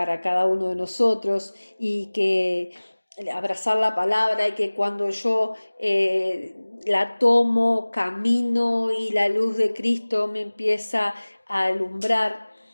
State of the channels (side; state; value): both; inverted; correlation -1.00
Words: cada uno de nosotros, y que abrazar la palabra, y que cuando yo la tomo, camino y la luz de Cristo me empieza a alumbrar.